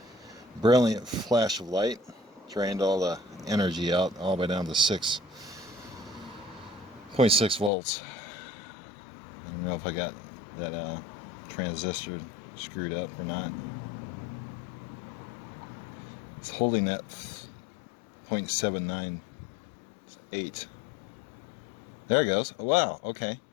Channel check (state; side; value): drops out; right; at 7.7 s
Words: Brilliant flash of light, drained all the energy out all the way down to 6.6 volts. I don't know if I got that transistor screwed up or not. It's holding that 0.798. There it goes. Oh, wow, okay.